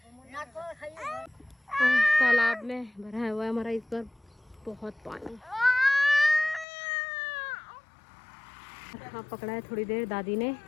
तालाब में भरा हुआ है हमारा इस बार बहुत पानी। हाँ, पकड़ा है थोड़ी देर दादी ने।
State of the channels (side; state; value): right; drops out; at 6.7 s